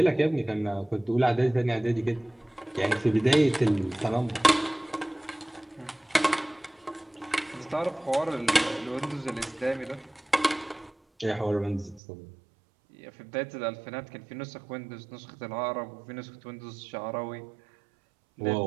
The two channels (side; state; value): left; drops out; at 12.0 s